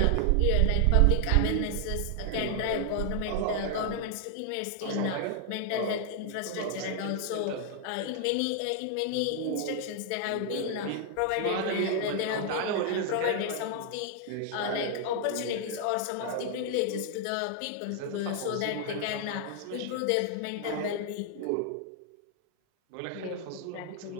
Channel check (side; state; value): both; different; correlation 0.00